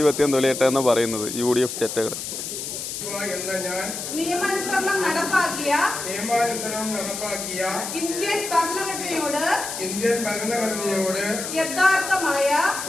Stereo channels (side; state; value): left; noise; hiss, 6 dB below the sound